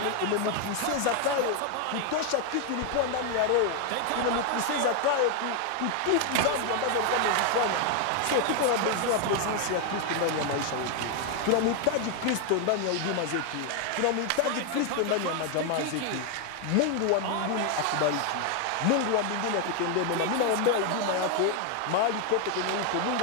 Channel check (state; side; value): different; both; correlation 0.01